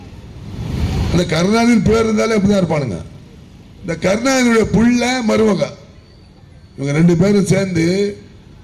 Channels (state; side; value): identical; both; correlation 1.00